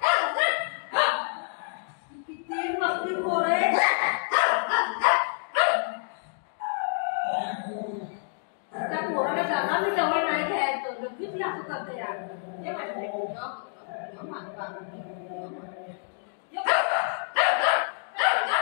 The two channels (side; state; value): right; silent; 59 dB below the other